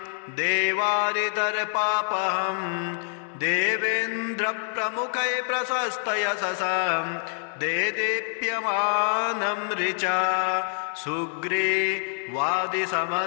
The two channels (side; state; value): right; silent; digital silence